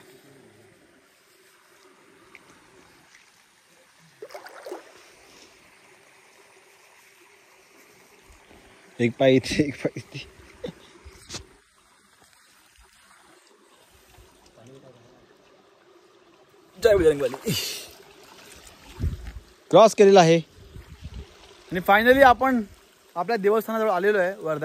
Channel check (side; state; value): both; identical; correlation 1.00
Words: एक पाय इथे एक पाय इथे. जय बजरंगबली. क्रॉस केलेला आहे आणि फायनली आपण आपल्या देवस्थानाजवळ आलेलो आहे,